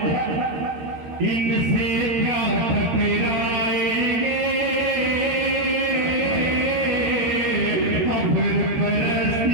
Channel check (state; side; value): late; left; 13 ms